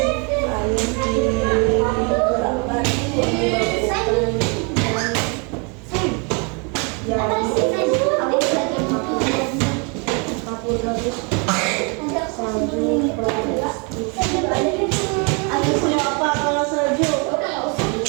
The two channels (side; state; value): left; quieter; 34.1 dB